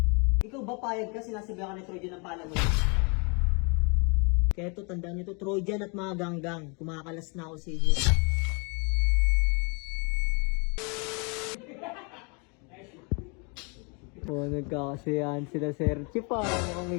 Ikaw ba payag ka sinasabihan ka ni Trojan ng palamunin? Kaya ito, tandaan nyo ito, Trojan at mga ganggang, kumakalas na ako sa inyo. Oh, nagkakasiyahan sila Sir Chip ah. Mukhang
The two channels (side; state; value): right; quieter; 33.4 dB